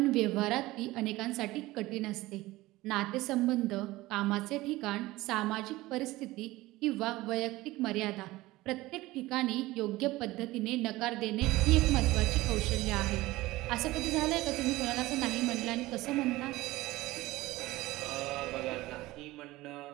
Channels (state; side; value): quieter; left; 18.6 dB